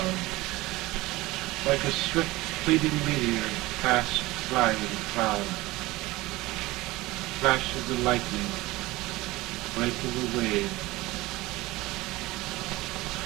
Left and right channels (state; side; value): quieter; left; 19.8 dB